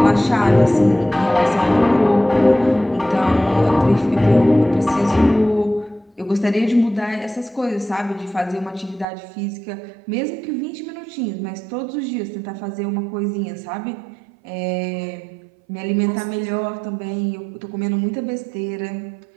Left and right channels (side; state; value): left; drops out; at 9.1 s